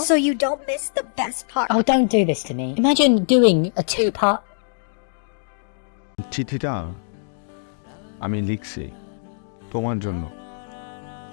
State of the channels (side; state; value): right; silent; 63 dB below the other